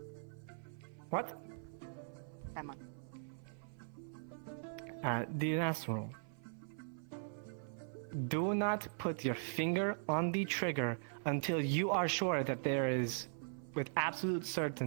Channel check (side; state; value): left; silent; 51 dB below the other